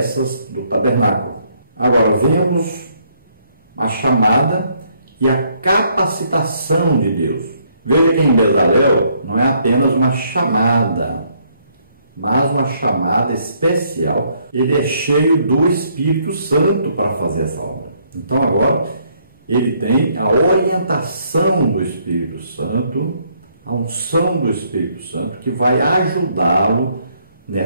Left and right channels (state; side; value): inverted; both; correlation -0.69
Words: do tabernáculo. Agora vemos a chamada e a capacitação de Deus. Veja que em Bezalel não é apenas uma chamada, mas uma chamada especial. Ele é cheio do Espírito Santo para fazer essa obra. Então agora ele tem a orientação do Espírito Santo, a unção do Espírito Santo, que vai ajudá-lo